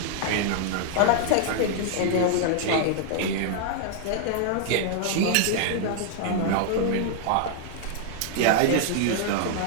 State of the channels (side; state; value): both; different; correlation 0.00